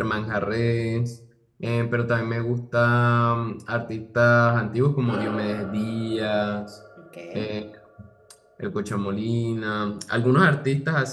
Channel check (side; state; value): both; identical; correlation 1.00